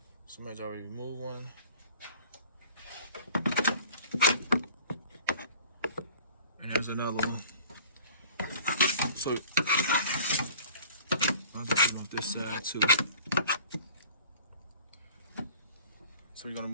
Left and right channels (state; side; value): inverted; both; correlation -0.47